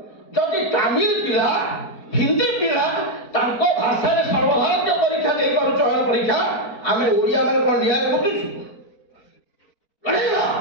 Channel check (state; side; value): late; right; 4.4 ms